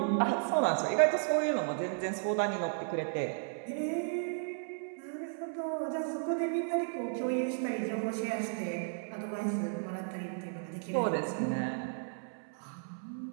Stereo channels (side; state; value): left; silent; 55 dB below the other